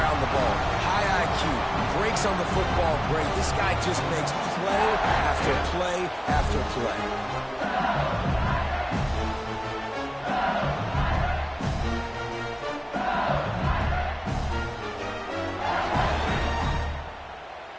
the ball. High IQ, breaks on the football great. This guy just makes play after play after play.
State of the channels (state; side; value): identical; both; correlation 1.00